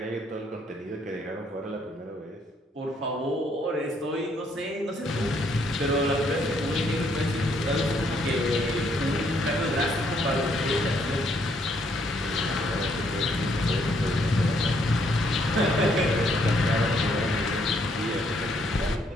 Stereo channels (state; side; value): normal; both; correlation 0.70